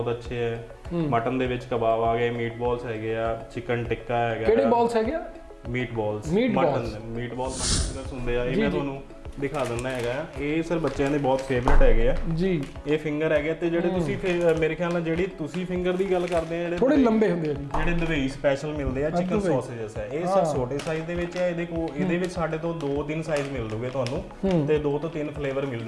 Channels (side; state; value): both; identical; correlation 1.00